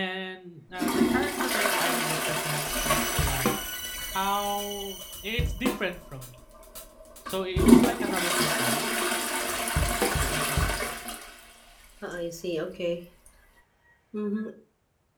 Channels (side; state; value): both; identical; correlation 1.00